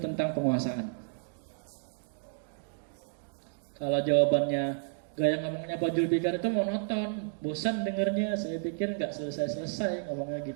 penguasaan. Kalau jawabannya gaya ngomongnya Pak Julfikar itu monoton, bosan dengernya. Saya pikir nggak selesai-selesai ngomongnya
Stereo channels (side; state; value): left; silent; 57 dB below the other